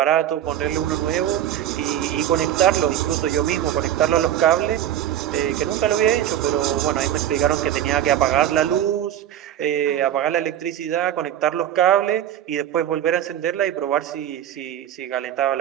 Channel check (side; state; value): left; quieter; 11.2 dB